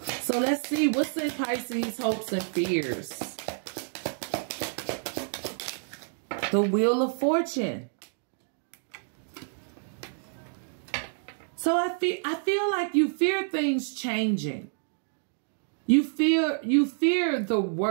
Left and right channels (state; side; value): silent; left; digital silence